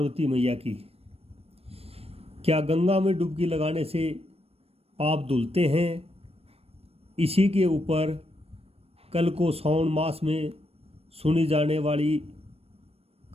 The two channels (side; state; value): left; late; 0.29 ms